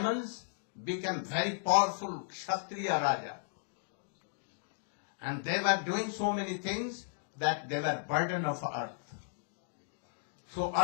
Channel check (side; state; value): right; silent; digital silence